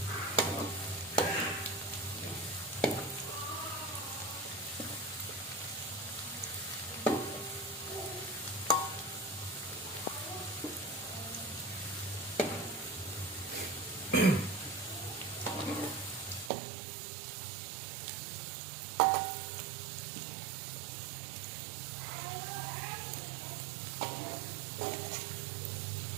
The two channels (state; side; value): drops out; left; at 16.5 s